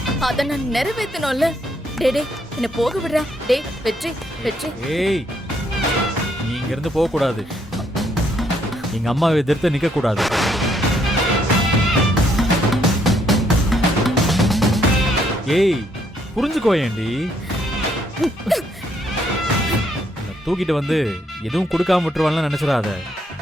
அத நான் நிறைவேற்றணும்ல. டேய் டேய், என்ன போக விடுறா. டேய் வெற்றி வெற்றி. ஏய், நீ இங்க இருந்து போக கூடாது. எங்க அம்மாவை எதிர்த்து நிக்க கூடாது. ஏய், புரிஞ்சுக்கோ ஏண்டி. தூக்கிட்டு வந்து எதுவும் கொடுக்காம விட்டுருவான்லாம் நினைச்சிடாத.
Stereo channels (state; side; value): normal; both; correlation 0.72